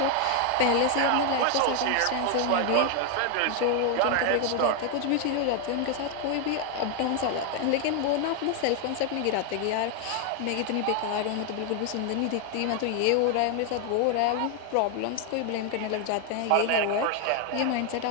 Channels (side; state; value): both; different; correlation 0.01